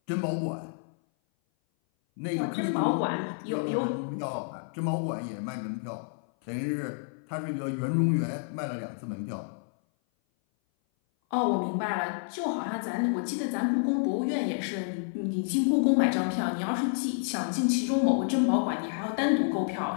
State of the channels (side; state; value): right; silent; 57 dB below the other